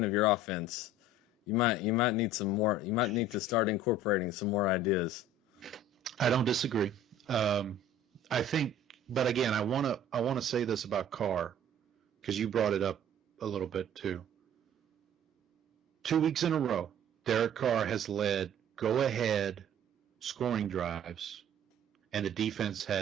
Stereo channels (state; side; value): normal; both; correlation 0.48